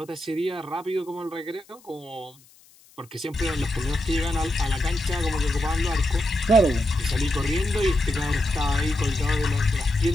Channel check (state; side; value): noise; left; hiss, 28 dB below the sound